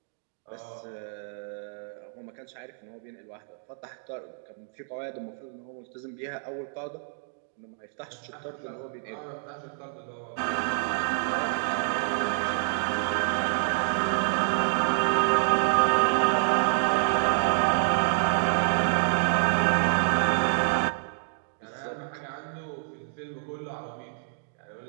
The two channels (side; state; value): left; silent; digital silence